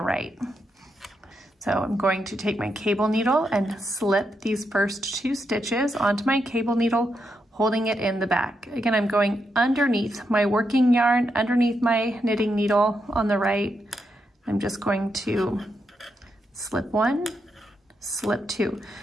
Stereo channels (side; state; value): both; normal; correlation 0.83